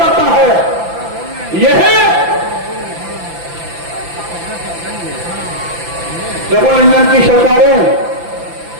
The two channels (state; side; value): late; left; 5.9 ms